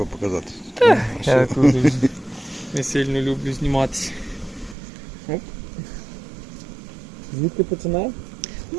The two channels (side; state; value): left; drops out; at 4.8 s